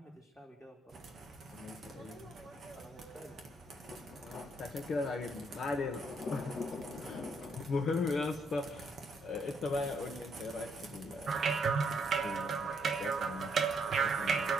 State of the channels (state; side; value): normal; both; correlation 0.73